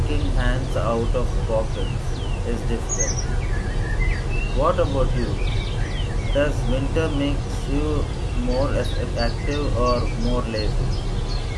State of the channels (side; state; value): both; identical; correlation 1.00